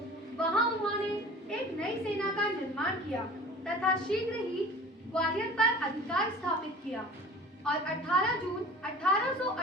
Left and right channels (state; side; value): normal; both; correlation 0.42